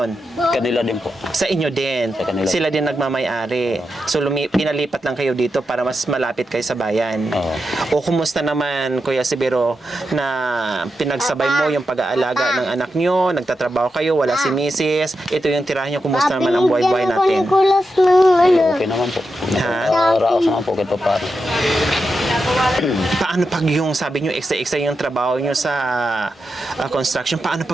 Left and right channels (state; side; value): normal; both; correlation 0.88